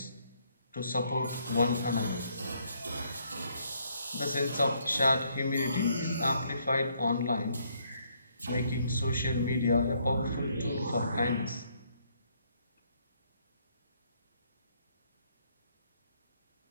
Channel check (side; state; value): both; inverted; correlation -0.70